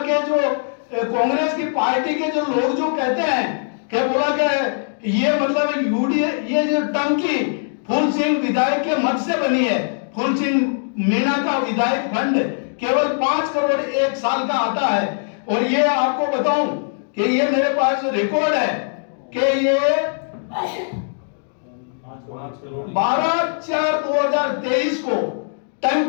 के जो कांग्रेस की पार्टी के जो लोग जो कहते हैं कि बोला कि ये मतलब यूडीए ये जो टंकी फूल सिंह विधायक के मत से बनी है, फूल सिंह मीणा का विधायक फंड केवल 5 करोड़ 1 साल का आता है। और ये आपको बताऊं कि ये मेरे पास रिकॉर्ड है कि ये 12/4/2023 को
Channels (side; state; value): right; silent; digital silence